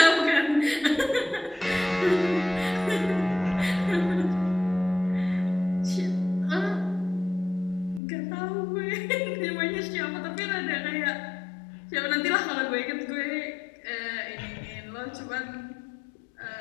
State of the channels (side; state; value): right; drops out; at 8.0 s